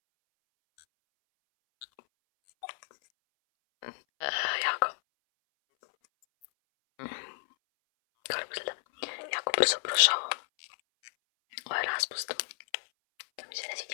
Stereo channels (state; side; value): silent; right; 57 dB below the other